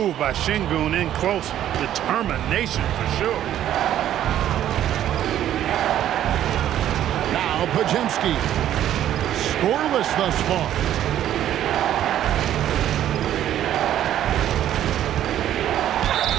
by Şengün in close. Determination for sure. Now Pajemski. Scoreless thus far.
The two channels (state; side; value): quieter; left; 11.6 dB